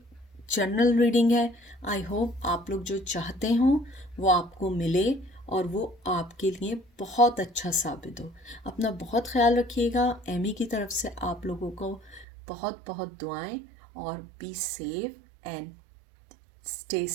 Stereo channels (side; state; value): left; drops out; at 12.2 s